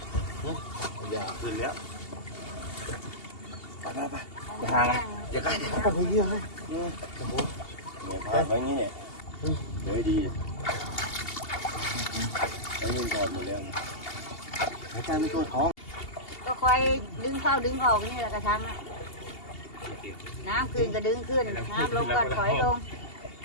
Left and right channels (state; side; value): late; right; 2.8 ms